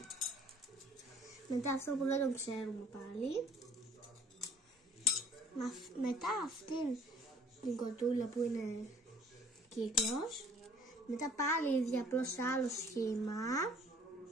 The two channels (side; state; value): both; normal; correlation 0.56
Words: Μετά αυτό που δεν τον ξέρουμε πάλι. Μετά αυτήν την κοτούλα που είναι κύκλος. Μετά πάλι ίδια, απλώς σε άλλο σχήμα.